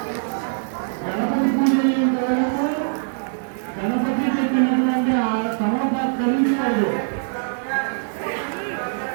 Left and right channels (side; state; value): left; silent; digital silence